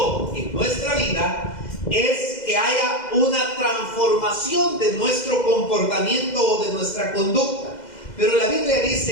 en nuestra vida es que haya una transformación de nuestro comportamiento o de nuestra conducta. Pero la Biblia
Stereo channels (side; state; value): right; late; 2.0 ms